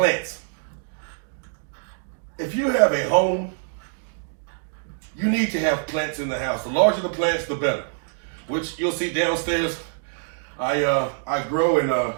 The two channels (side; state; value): left; silent; digital silence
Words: If you have a home, you need to have plants in the house. The larger the plants, the better. Which you'll see downstairs. I grow and